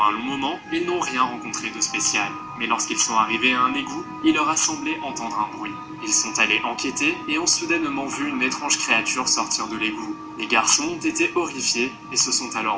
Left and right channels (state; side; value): identical; both; correlation 1.00